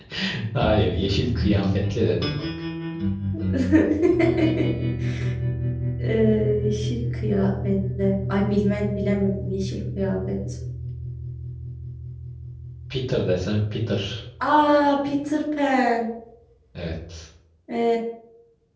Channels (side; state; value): both; identical; correlation 1.00